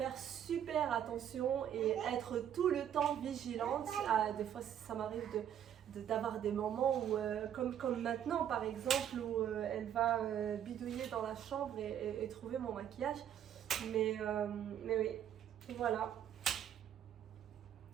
super attention et être tout le temps vigilante. Des fois, ça m'arrive d'avoir des moments où, comme maintenant par exemple, où elle va bidouiller dans la chambre et trouver mon maquillage. Mais oui, voilà.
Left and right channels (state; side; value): quieter; left; 9.8 dB